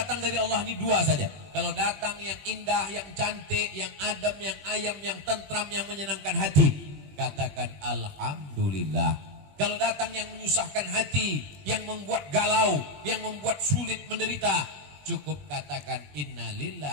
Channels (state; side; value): late; left; 21 ms